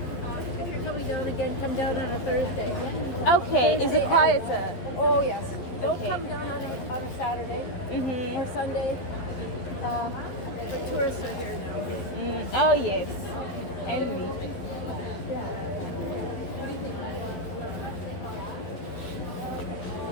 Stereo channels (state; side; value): late; right; 12 ms